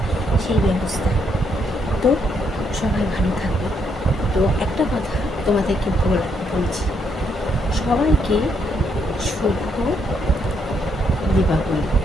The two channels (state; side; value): normal; both; correlation 0.74